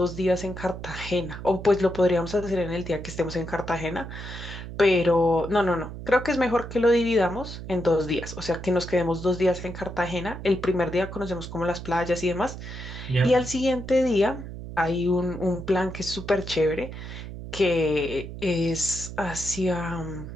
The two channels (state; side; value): noise; right; hum, 10 dB below the sound